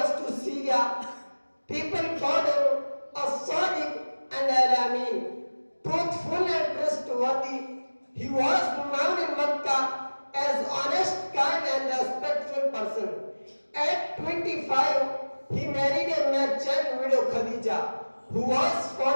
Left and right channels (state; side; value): inverted; both; correlation -1.00